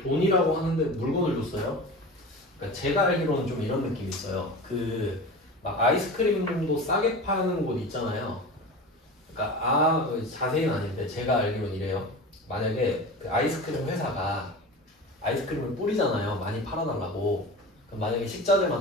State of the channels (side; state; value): both; normal; correlation 0.32